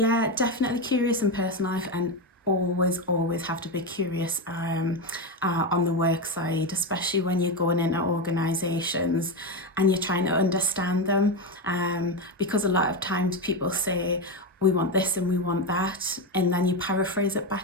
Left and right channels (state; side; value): normal; both; correlation 0.12